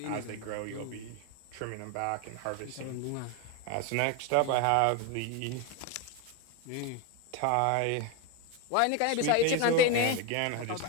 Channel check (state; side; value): different; both; correlation 0.02